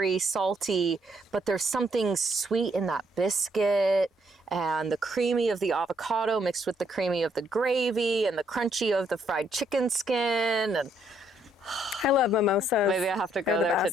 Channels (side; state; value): both; normal; correlation 0.71